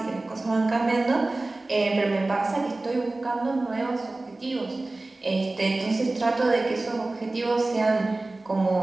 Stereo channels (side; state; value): left; quieter; 3.0 dB